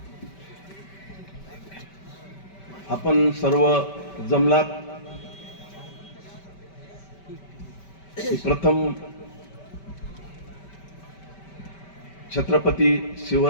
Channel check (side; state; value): right; late; 5.2 ms